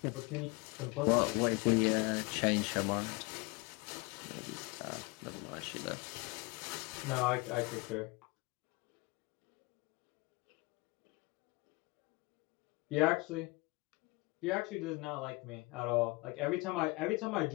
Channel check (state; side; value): quieter; right; 25.3 dB